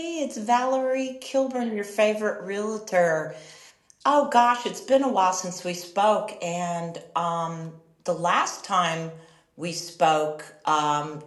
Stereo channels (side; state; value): both; identical; correlation 1.00